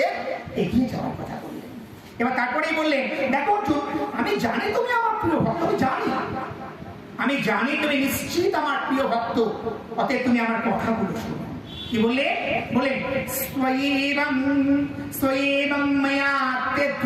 এগিয়ে যাওয়ার কথা বললেন। এবার তারপরেই বললেন, দেখো অর্জুন, আমি জানি তুমি আমার প্রিয় ভক্ত, আমি জানি তুমি নিশ্চিত আমার প্রিয় ভক্ত, অতএব তুমি আমার কথাগুলো শোনো। কি বললে? বলেন স্বয়েবং ময়া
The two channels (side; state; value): both; identical; correlation 1.00